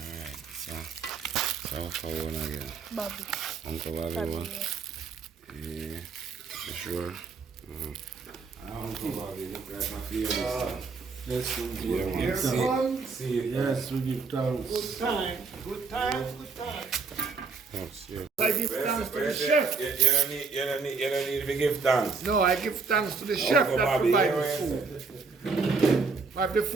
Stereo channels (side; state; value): left; quieter; 4.6 dB